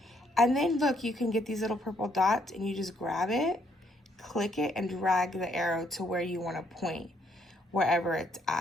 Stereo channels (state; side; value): normal; both; correlation 0.70